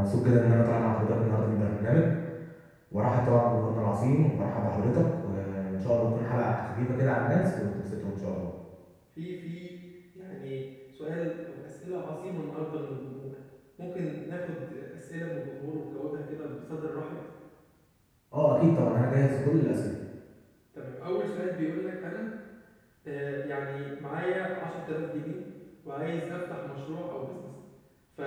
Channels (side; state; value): both; identical; correlation 1.00